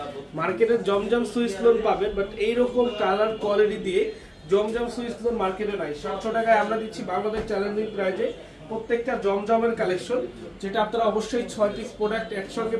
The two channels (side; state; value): both; identical; correlation 1.00